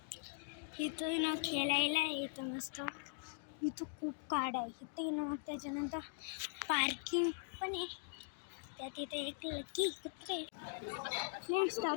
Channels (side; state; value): right; silent; digital silence